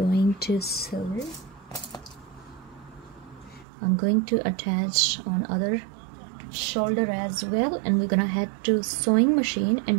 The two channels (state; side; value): drops out; left; at 3.7 s